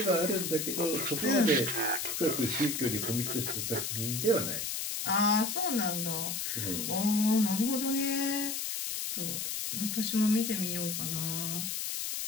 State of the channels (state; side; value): noise; left; hiss, 2 dB below the sound